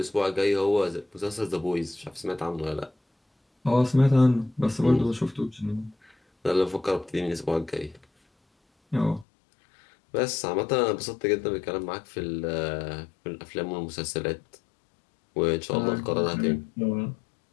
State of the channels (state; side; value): drops out; right; at 9.2 s